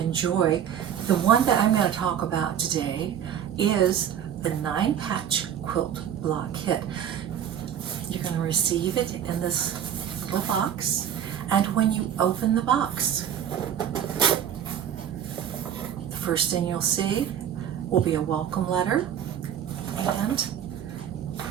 The one that I'm going to talk about today is the 9-patch quilt block kit. You're going to receive it in this little box, and when you open the box, the first thing you'll see will be a welcome letter and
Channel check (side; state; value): left; quieter; 9.3 dB